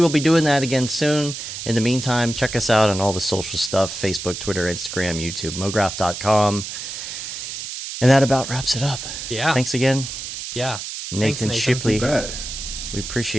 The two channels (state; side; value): noise; right; hiss, 7 dB below the sound